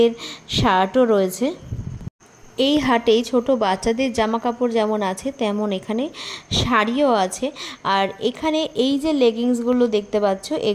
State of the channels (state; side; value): identical; both; correlation 1.00